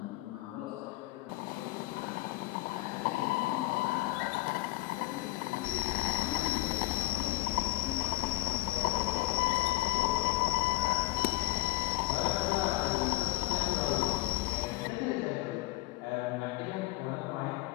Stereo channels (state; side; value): quieter; right; 18.8 dB